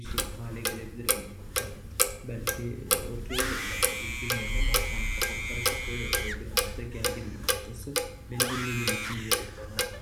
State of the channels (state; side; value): identical; both; correlation 1.00